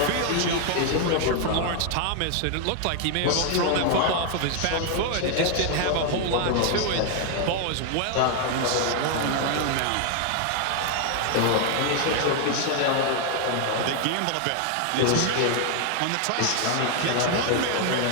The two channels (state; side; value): different; both; correlation 0.00